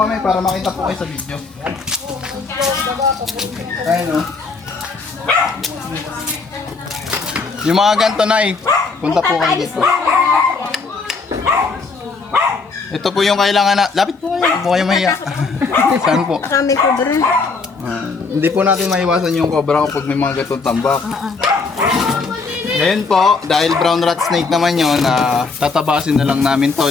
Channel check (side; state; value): right; quieter; 4.3 dB